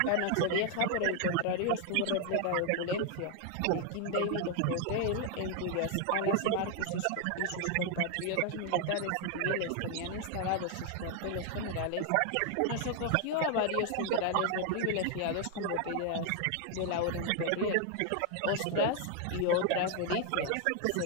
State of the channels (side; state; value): both; different; correlation 0.00